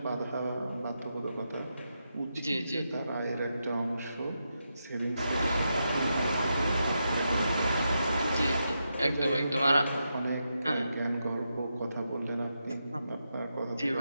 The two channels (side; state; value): both; inverted; correlation -0.85